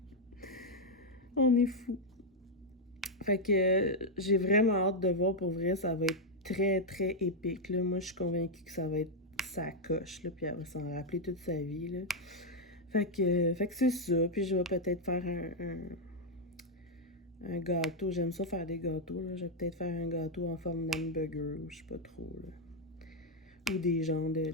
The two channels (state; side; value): normal; both; correlation -0.01